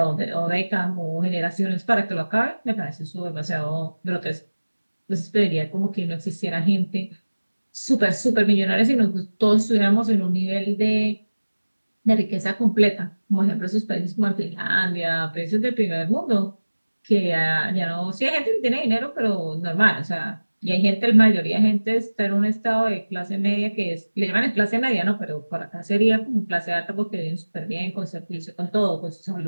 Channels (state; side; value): inverted; both; correlation -1.00